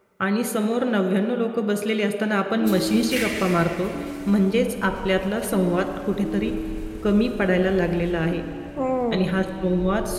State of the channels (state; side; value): identical; both; correlation 1.00